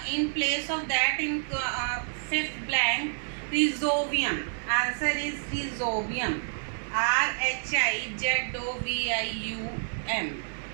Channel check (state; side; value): silent; left; digital silence